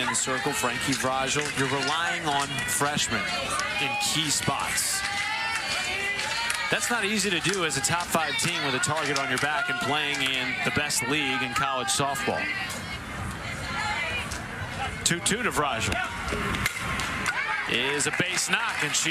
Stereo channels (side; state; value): both; identical; correlation 1.00